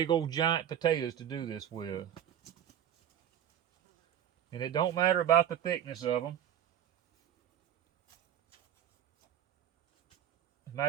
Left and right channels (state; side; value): quieter; left; 10.1 dB